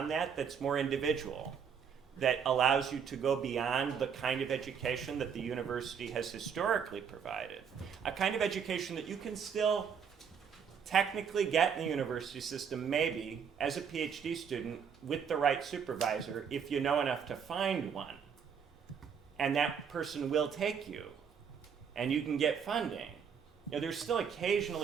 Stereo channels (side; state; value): left; quieter; 7.1 dB